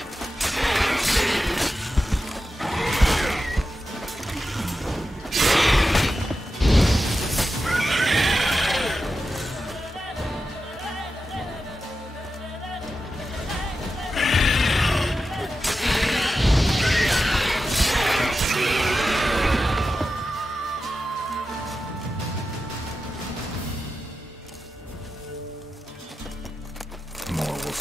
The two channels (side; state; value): both; normal; correlation 0.91